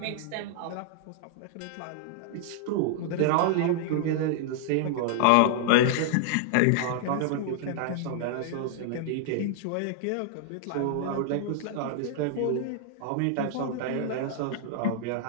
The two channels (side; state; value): both; different; correlation -0.01